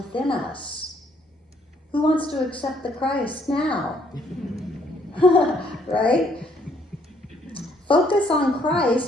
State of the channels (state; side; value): normal; both; correlation 0.67